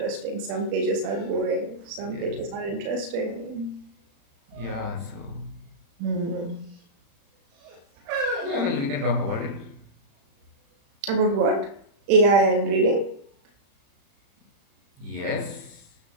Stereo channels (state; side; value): late; left; 35 ms